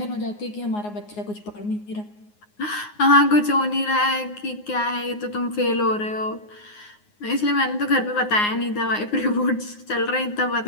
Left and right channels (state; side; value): late; right; 9.6 ms